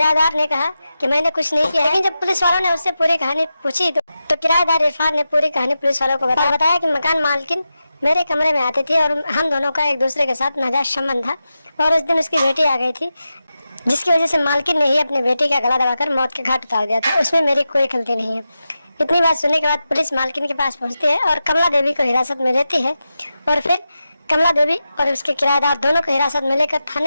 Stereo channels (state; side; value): inverted; both; correlation -0.91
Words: ने कहा कि मैंने कुछ नहीं किया, लेकिन जब पुलिस वालों ने उससे पूरी कहानी पूछी तो किराएदार इरफान ने पूरी कहानी पुलिस वालों को बताया कि मकान मालकिन मेरे कमरे में आती थी और हम दोनों का एक दूसरे के साथ नाजायज संबंध था और उस दिन उसकी बेटी आ गई थी जिसकी वजह से मालकिन ने ही अपनी बेटी का गला दबाकर मौत के घाट उतार दिया था। उसमें मेरी कोई गलती नहीं है। इतनी बात सुनने के बाद पुलिस मालकिन के पास पहुंचती है और कमला देवी को हिरासत में लेती है और फिर कमला देवी और उसके किराएदार दोनों को हिरासत में लेकर